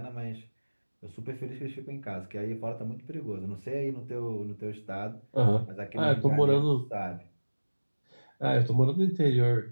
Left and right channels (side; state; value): both; inverted; correlation -1.00